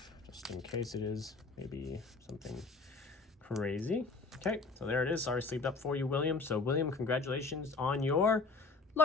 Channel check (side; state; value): right; quieter; 3.9 dB